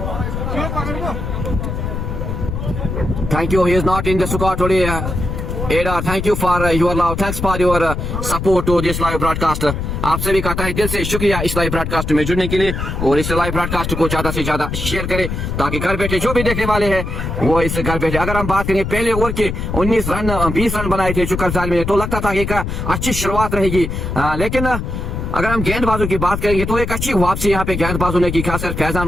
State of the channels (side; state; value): left; noise; rumble, 4 dB below the sound